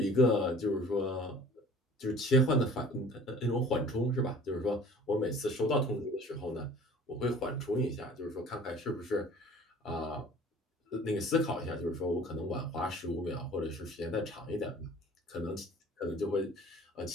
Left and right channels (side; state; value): both; normal; correlation 0.48